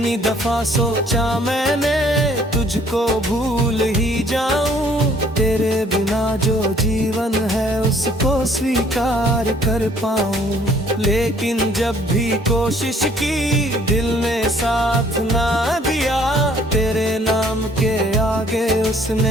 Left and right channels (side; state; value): both; normal; correlation 0.60